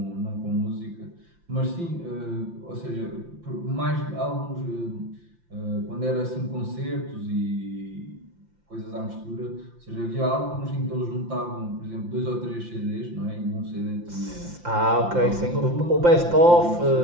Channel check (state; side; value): late; left; 5.8 ms